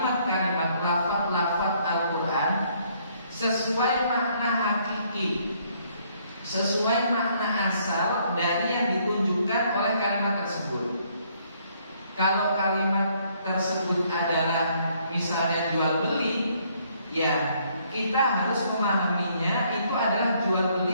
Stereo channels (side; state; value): both; inverted; correlation -0.67